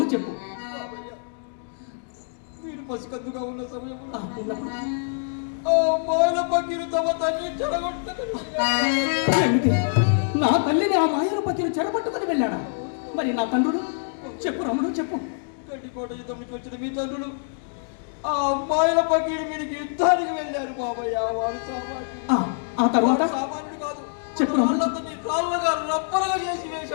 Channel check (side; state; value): right; silent; digital silence